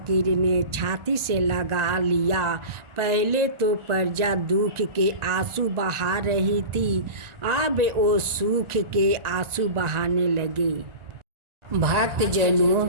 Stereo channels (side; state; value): left; late; 1.4 ms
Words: ने छाती से लगा लिया। पहले तो प्रजा दुख के आंसू बहा रही थी, अब वो सुख के आंसू बहाने लगे। भक्त जनों,